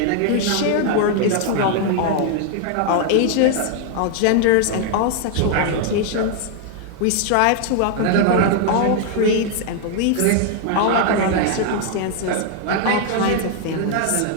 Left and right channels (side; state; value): both; different; correlation 0.00